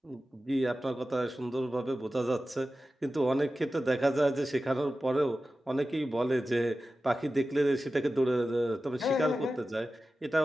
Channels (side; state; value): both; normal; correlation 0.94